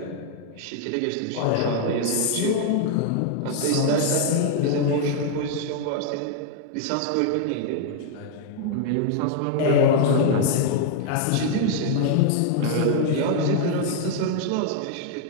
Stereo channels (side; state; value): both; different; correlation 0.00